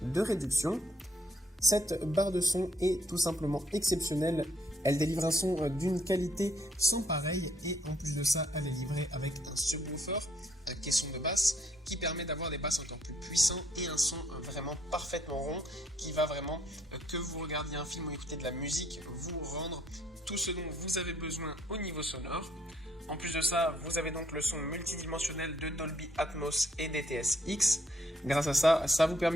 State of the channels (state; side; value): normal; both; correlation 0.69